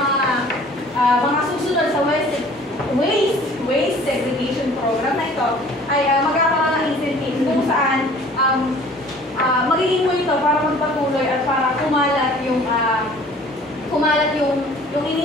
susunod sa waste segregation program na ito ay magkakaroon ng incentive kung saan magiging mo ito para magpatuloy at para kumalat yung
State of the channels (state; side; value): normal; both; correlation 0.50